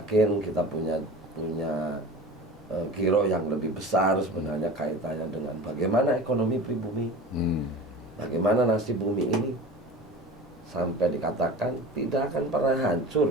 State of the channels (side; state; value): both; normal; correlation 0.35